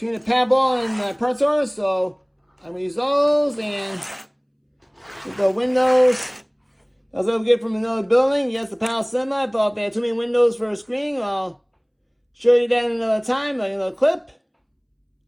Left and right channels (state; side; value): identical; both; correlation 1.00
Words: the pad wall and the pertor, so I'm going to use those and with the windows. I was able to get from another building. Yes, the panel semi. I thought they had too many windows for a screen. I'll show you that another time, like another clip.